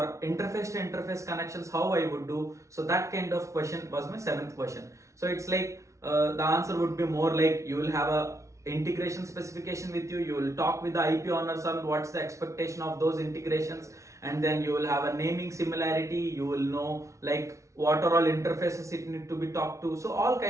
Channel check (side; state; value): left; late; 0.14 ms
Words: interface to interface connections, how I would do. So that kind of question was my seventh question. So it's like the answer would be more like you will have a integration specification with you, you will talk with the IP owners on what's the expectation of those integrations, and then you will have a naming similarity, you will know like what are all interfaces it need to be talked to. So all